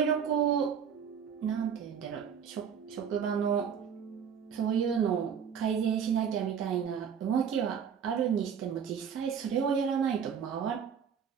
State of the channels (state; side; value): quieter; left; 7.5 dB